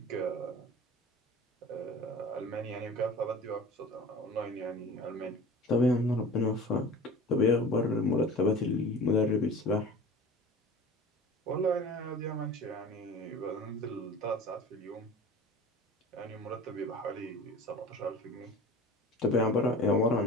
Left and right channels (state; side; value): normal; both; correlation 0.38